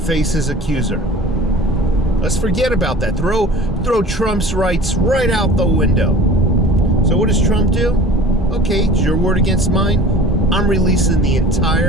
his accuser. Let's forget about that. Throw Trump's rights right out the window. So what does Trump do? Okay, it's your word against mine. I'm releasing the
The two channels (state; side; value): normal; both; correlation 0.42